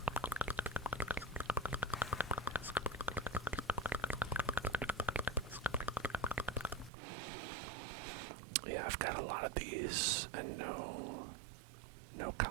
Yeah, I've got a lot of these and no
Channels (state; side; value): drops out; left; at 6.9 s